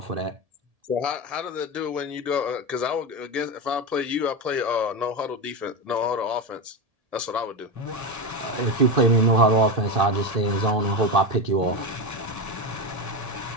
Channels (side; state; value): left; late; 1.7 ms